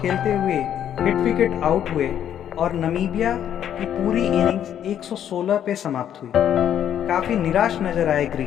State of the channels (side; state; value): right; quieter; 10.0 dB